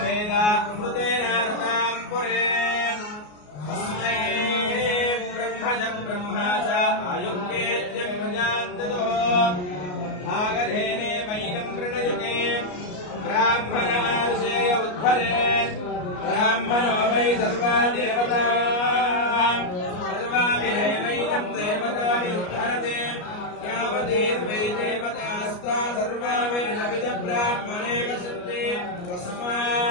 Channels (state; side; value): late; right; 33 ms